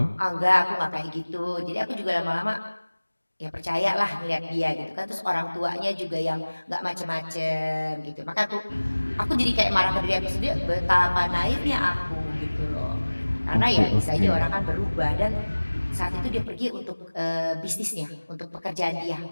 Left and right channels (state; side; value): inverted; both; correlation -1.00